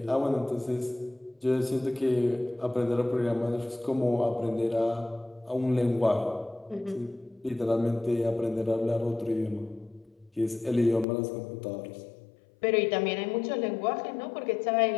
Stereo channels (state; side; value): drops out; right; at 11.1 s